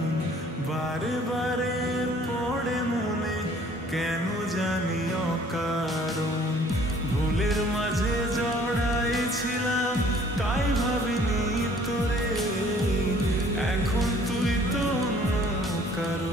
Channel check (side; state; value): both; normal; correlation 0.56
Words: বারে বারে পড়ে মনে কেন জানি অকারণ। ভুলের মাঝে জড়াইছিলাম তাই ভাবিনি তোরে, এখন তুই তো অন্য